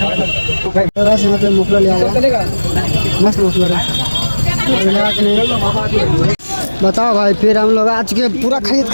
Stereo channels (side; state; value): both; inverted; correlation -1.00